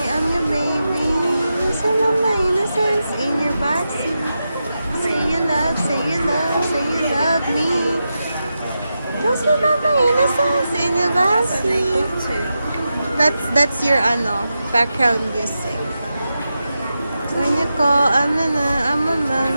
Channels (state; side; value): inverted; both; correlation -0.90